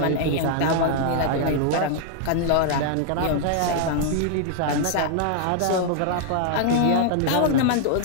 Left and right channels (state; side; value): different; both; correlation 0.00